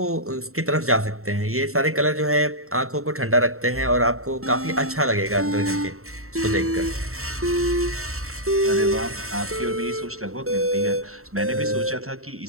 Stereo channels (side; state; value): left; late; 0.63 ms